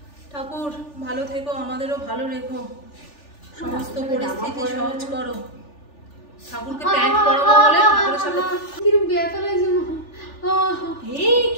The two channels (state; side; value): late; right; 3.4 ms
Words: ठाकुर ভালো থেকো, আমাদেরও ভালো রেখো, সমস্ত পরিস্থিতি সহজ করো। ঠাকুরকে প্যান্ট পরাবো বলে ঠাকুরের সাথে কিরকম ব্যথা লাগছে মা। এই